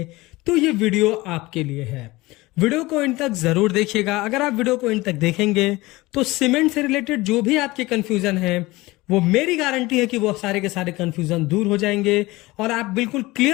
तो ये वीडियो आपके लिए है। वीडियो को इन तक जरूर देखिएगा। अगर आप वीडियो को इन तक देखेंगे तो सीमेंट से रिलेटेड जो भी आपके कंफ्यूजन है, वो मेरी गारंटी है कि वो सारे के सारे कंफ्यूजन दूर हो जाएंगे और आप बिल्कुल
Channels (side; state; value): right; quieter; 20.6 dB